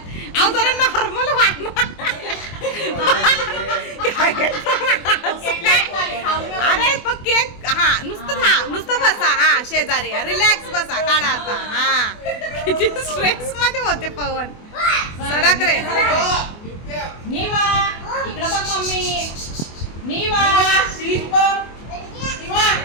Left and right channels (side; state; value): right; late; 24 ms